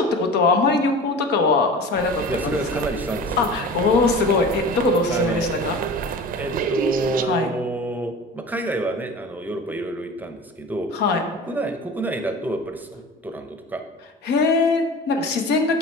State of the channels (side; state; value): both; normal; correlation 0.37